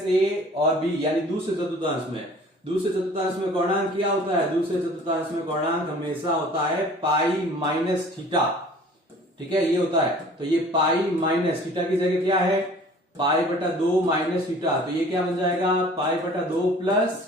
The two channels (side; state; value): both; normal; correlation 0.49